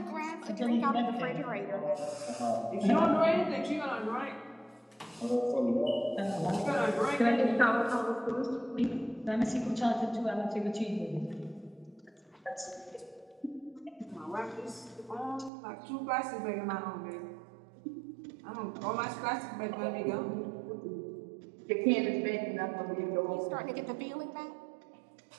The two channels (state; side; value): drops out; left; at 15.5 s